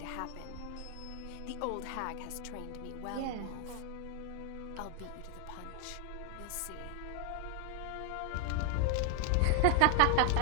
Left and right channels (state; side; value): different; both; correlation 0.00